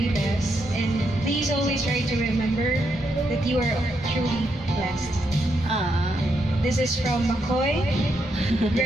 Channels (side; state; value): both; normal; correlation 0.80